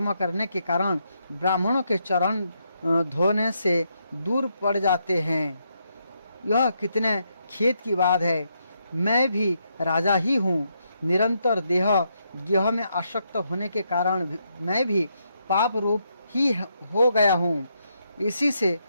करने के कारण ब्राह्मणों के चरण धोने से दूर पड़ जाते हैं। यह कितने खेद की बात है। मैं भी राजा ही हूँ। निरंतर देह गेह में आसक्त होने के कारण मैं भी पाप रूप ही हो गया हूँ। इसी से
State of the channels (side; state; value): both; inverted; correlation -0.79